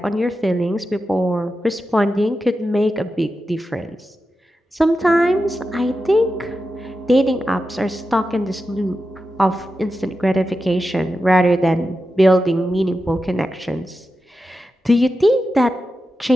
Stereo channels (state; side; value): normal; both; correlation 0.90